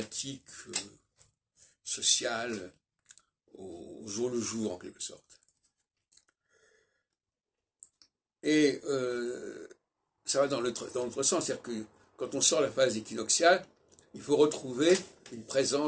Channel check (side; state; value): both; identical; correlation 1.00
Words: sociales au jour le jour, en quelque sorte. Et ça va dans l'autre sens, c'est-à-dire que quand on sort la phase équinoxiale, il faut retrouver une